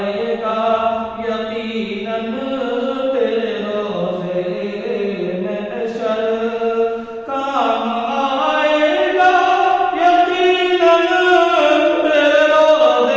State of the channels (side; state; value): both; identical; correlation 1.00